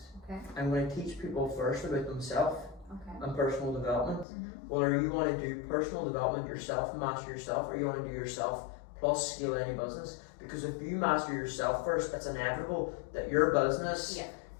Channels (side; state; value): right; drops out; at 4.2 s